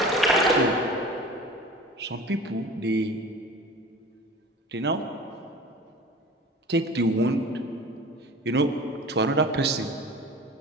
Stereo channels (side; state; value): both; normal; correlation 0.39